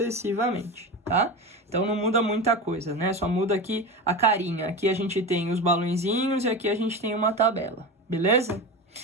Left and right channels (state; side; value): normal; both; correlation 0.25